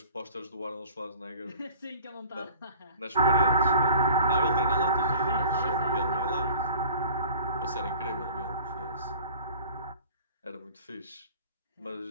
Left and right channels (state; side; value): inverted; both; correlation -0.47